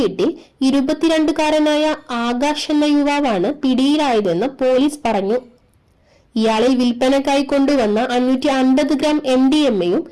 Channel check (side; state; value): both; identical; correlation 1.00